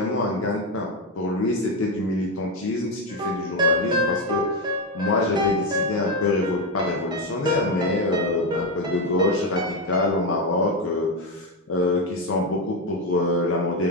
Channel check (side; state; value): both; normal; correlation 0.10